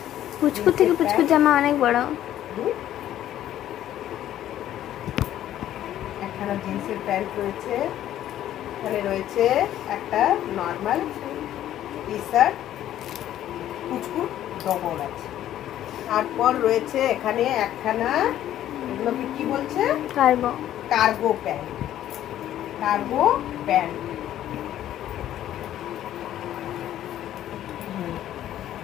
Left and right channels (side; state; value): right; quieter; 12.1 dB